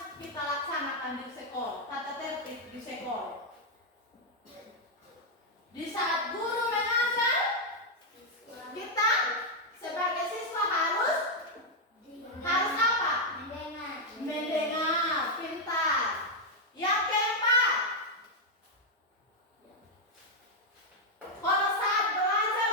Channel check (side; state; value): both; normal; correlation 0.00